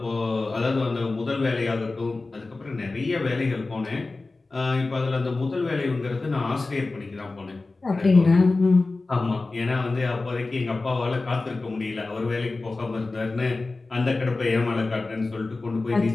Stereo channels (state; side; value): quieter; right; 3.5 dB